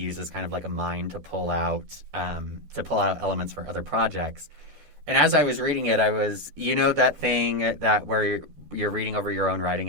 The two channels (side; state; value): left; late; 14 ms